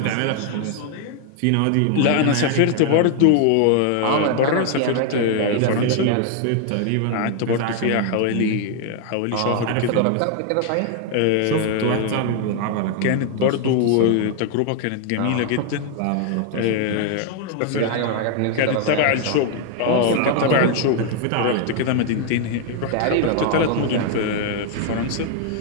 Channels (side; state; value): both; different; correlation 0.00